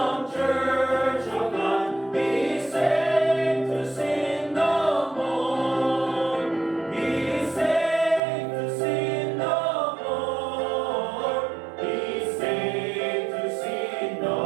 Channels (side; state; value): left; drops out; at 8.2 s